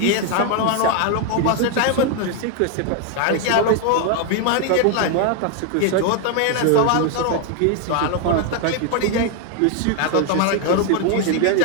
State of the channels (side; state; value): both; different; correlation 0.01